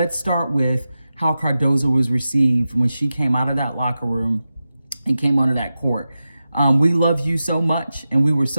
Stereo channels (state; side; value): inverted; both; correlation -0.92